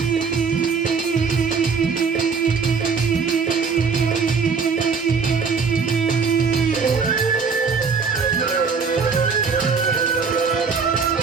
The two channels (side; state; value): left; quieter; 5.4 dB